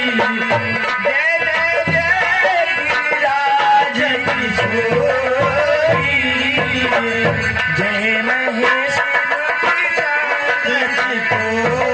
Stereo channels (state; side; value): identical; both; correlation 1.00